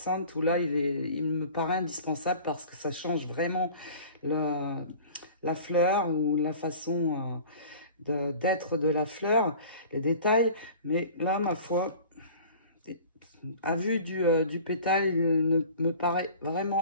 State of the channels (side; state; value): both; inverted; correlation -0.43